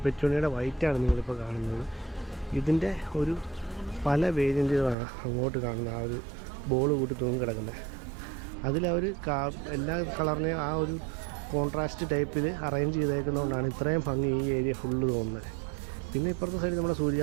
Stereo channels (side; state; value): left; drops out; at 5.0 s